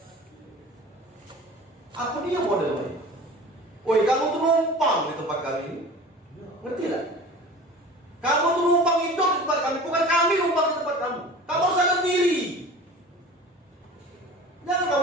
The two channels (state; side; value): normal; both; correlation 0.40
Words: Apa dia modelnya? Woi, kamu tuh numpang di tempat kami. Ngerti tak? Kamu tuh numpang hidup di tempat kami, bukan kami numpang di tempat kamu. Kamu harus sadar diri. Jangan